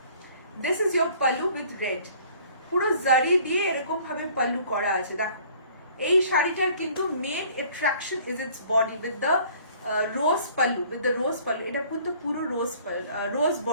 this is your pallu with red. পুরো জারি দিয়ে এরকম ভাবে পাল্লু করা আছে। দেখো এই শাড়িটার কিন্তু main attraction is its body with the rose pallu, with the rose pallu. এটা কিন্তু পুরো রোজ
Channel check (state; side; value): inverted; both; correlation -0.54